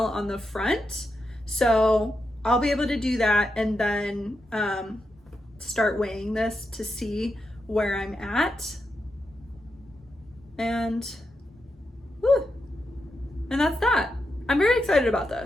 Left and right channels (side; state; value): both; normal; correlation 0.86